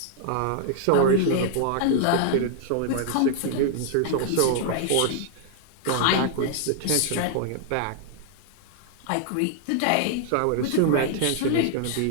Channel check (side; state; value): both; different; correlation -0.01